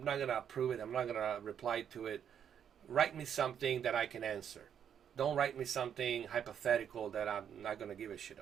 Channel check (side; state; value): left; quieter; 8.6 dB